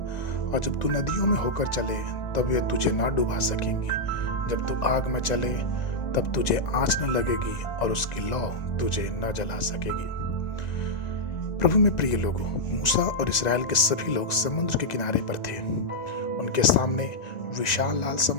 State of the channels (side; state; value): right; late; 2.0 ms